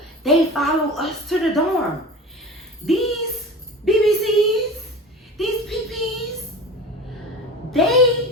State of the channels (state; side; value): normal; both; correlation 0.34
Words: they follow us to the dorm. These BBCs, these PPs,